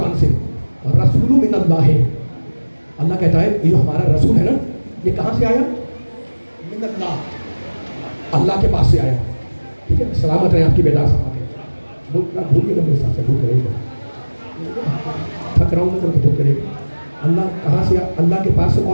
سے، رسول من اللہ. اللہ کہتا ہے یہ جو ہمارا رسول ہے نا، یہ کہاں سے آیا؟ من اللہ، اللہ کے پاس سے آیا. ٹھیک ہے، سلامت رہیں آپ کی بیدار سماعتیں. بھولیے گا میرے ساتھ سے، بھول کرے گا، تھک رہا ہوں میں تو بھول کرے گا. اللہ کہاں سے آیا؟ اللہ کے پاس سے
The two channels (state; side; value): inverted; both; correlation -1.00